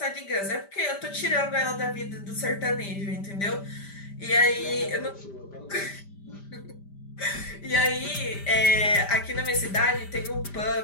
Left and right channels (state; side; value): late; right; 5.1 ms